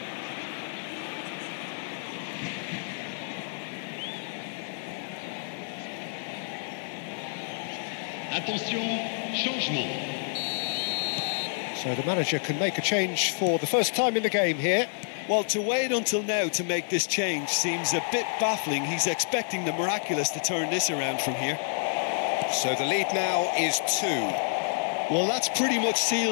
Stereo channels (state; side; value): silent; right; digital silence